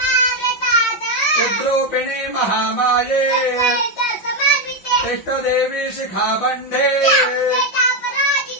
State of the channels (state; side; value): late; right; 5.4 ms